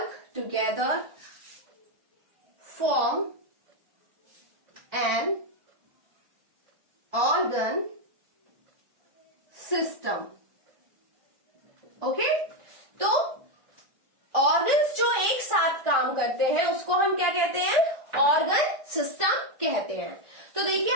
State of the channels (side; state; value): left; late; 1.5 ms